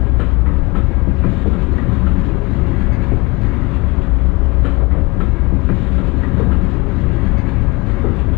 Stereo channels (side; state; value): right; quieter; 24.9 dB